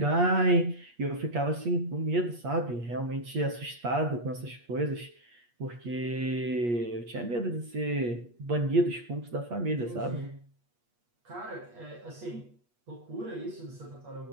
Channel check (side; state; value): left; late; 8.4 ms